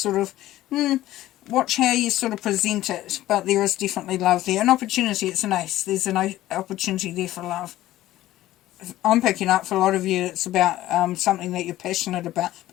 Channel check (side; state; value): right; quieter; 14.9 dB